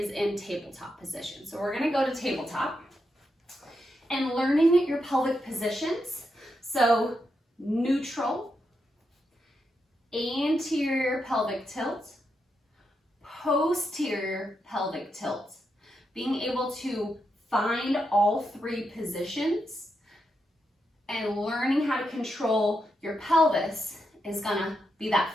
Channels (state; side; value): normal; both; correlation 0.84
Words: in tabletop position. So we're gonna go to tabletop and learning your pelvic positions. So neutral, anterior pelvic tilt, posterior pelvic tilt. Being able to find all three positions and learning how to control your pelvis is gonna be that